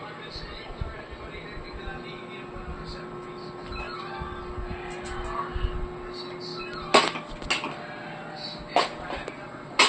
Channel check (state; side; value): identical; both; correlation 1.00